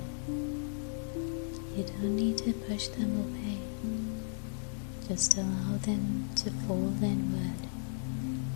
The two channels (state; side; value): silent; right; digital silence